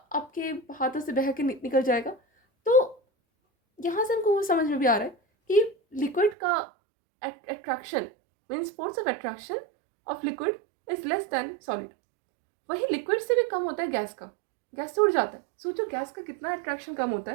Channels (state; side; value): drops out; left; at 6.4 s